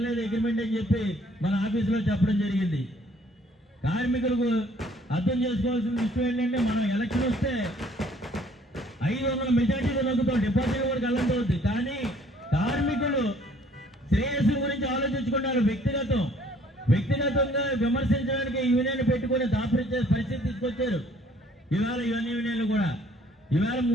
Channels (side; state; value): both; normal; correlation 0.59